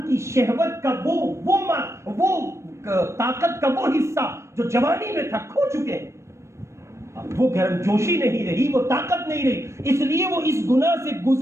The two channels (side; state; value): left; late; 0.13 ms